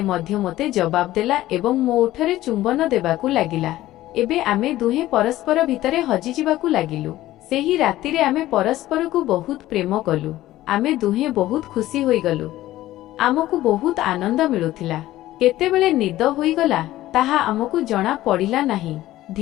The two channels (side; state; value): right; quieter; 15.3 dB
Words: ମଧ୍ୟ ମୋତେ ଜବାବ ଦେଲା ଏବଂ ମୋ ଓଠରେ ଚୁମ୍ବନ ଦେବାକୁ ଲାଗିଲା। ଏବେ ଆମେ ଦୁହେଁ ପରସ୍ପର ଭିତରେ ହଜିଯିବାକୁ ଲାଗିଲୁ। ସେହି ରାତିରେ ଆମେ ପରସ୍ପରକୁ ବହୁତ ପ୍ରେମ କଲୁ। ଆମେ ଦୁହେଁ ବହୁତ ଖୁସି ହୋଇଗଲୁ। ଆମକୁ ବହୁତ ଆନନ୍ଦ ମିଳୁଥିଲା। କେତେବେଳେ ନିଦ ହୋଇଗଲା ତାହା ଆମକୁ ଜଣା ପଡ଼ିଲା ନାହିଁ।